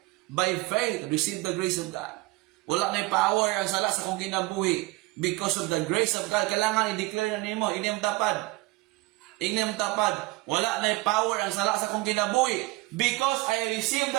By faith, receive the grace of God. Wala na power ang sala sa kung kinabuhi. Because of the grace of God, kailangan i-declare na nimo, inyong tapad. Inyong tapad. Wala na power ang sala sa kung kinabuhi. Because I receive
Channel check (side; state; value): left; quieter; 21.3 dB